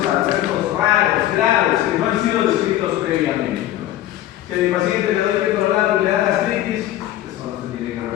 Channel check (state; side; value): quieter; right; 13.5 dB